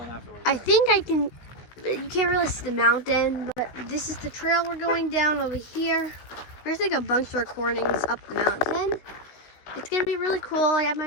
afterwards. I think I can. You can't really see the mountain, but this is the trail we're going down over here. We're gonna take a bunch of recordings up the mountain. It's gonna be really cool. I have my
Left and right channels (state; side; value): late; right; 16 ms